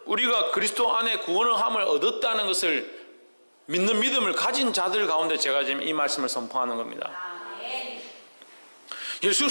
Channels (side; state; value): both; inverted; correlation -1.00